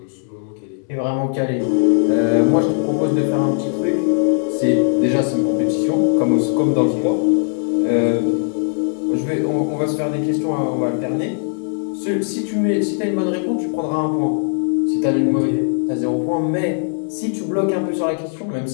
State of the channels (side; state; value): right; silent; 66 dB below the other